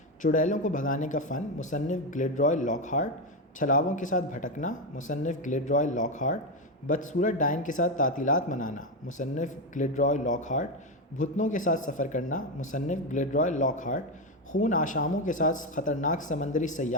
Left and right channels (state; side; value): normal; both; correlation 0.10